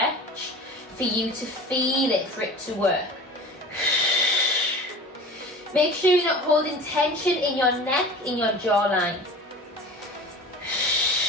for you to feel it, for it to work. Make sure you're not holding tension in your neck, in your jawline.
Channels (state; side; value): normal; both; correlation 0.38